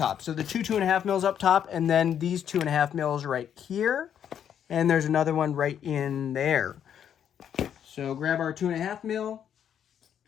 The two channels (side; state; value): right; quieter; 9.1 dB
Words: So the 2.5 mils up top, and then these 2.5 mils right here, and there's another one right in there. So grab our 2.5 mil